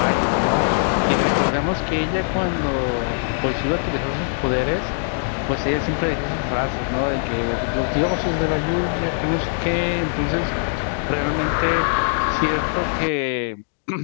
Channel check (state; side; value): silent; right; digital silence